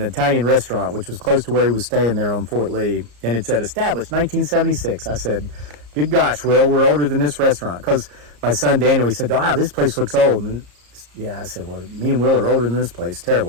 Italian restaurant, which was close to where he was staying there on Fort Lee, and it said established 1976. I said, good gosh, Will, we're older than this restaurant. Because my son Daniel, he said, this place looks old. And I said, well, me and Will are older than this place.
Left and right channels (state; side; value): late; left; 34 ms